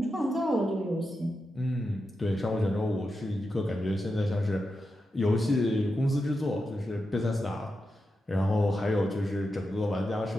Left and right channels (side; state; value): both; normal; correlation 0.89